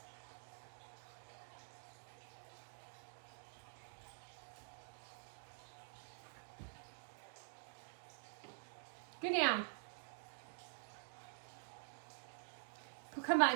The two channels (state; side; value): silent; left; digital silence